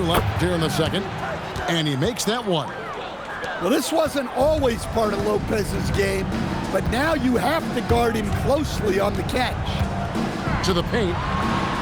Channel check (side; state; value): both; identical; correlation 1.00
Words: left here in the second. And he makes that one. Well, this wasn't always part of Lopez's game, but now you have to guard him closely on the catch. To the paint.